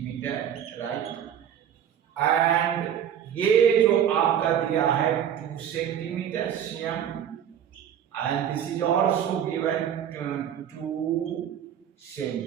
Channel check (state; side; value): quieter; left; 9.4 dB